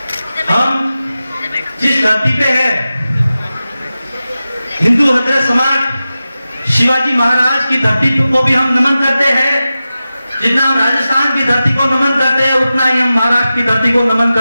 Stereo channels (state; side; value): inverted; both; correlation -0.94